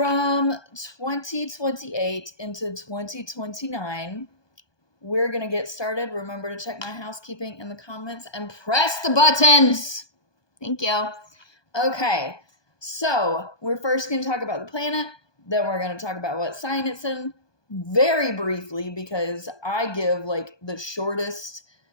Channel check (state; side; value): late; right; 1.2 ms